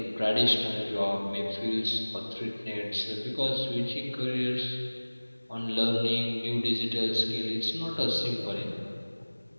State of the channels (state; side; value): inverted; both; correlation -1.00